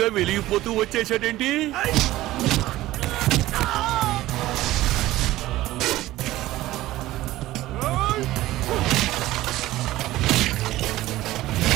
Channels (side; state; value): left; quieter; 16.3 dB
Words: గా వెలిగిపోతూ వచ్చేసాడేంటి?